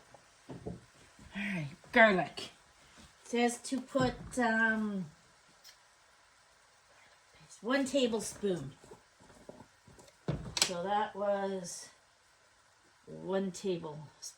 Alright, garlic. It says to put 1 tablespoon. So that was 1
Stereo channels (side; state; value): both; identical; correlation 1.00